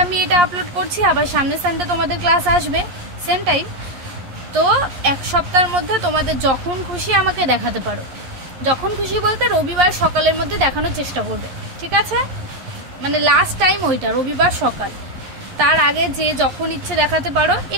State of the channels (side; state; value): left; late; 11 ms